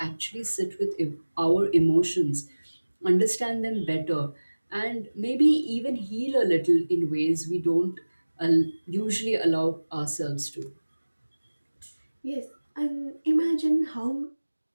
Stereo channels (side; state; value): both; inverted; correlation -1.00